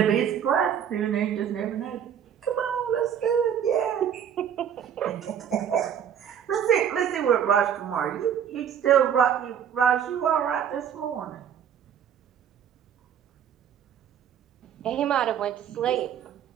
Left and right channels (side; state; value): left; quieter; 8.7 dB